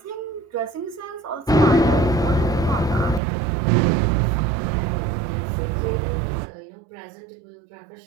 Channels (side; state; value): left; drops out; at 3.2 s